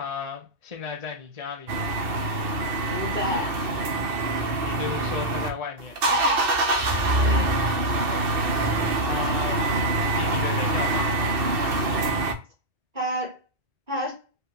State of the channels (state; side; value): late; left; 2.6 ms